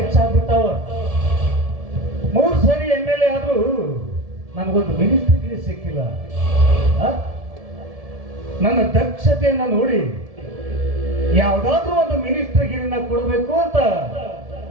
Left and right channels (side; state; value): left; late; 1.7 ms